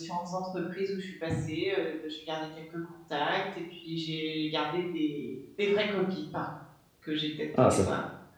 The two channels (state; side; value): identical; both; correlation 1.00